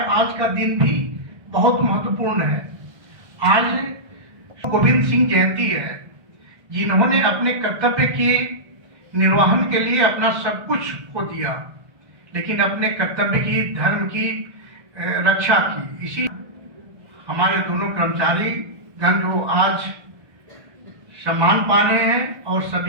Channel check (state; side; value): late; left; 1.6 ms